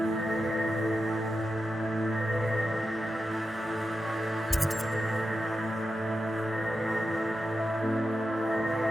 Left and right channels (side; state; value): both; normal; correlation 0.90